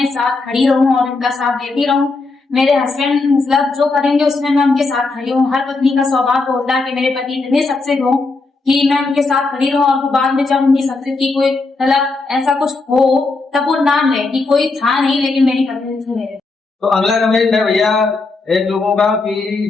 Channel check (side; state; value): right; quieter; 3.7 dB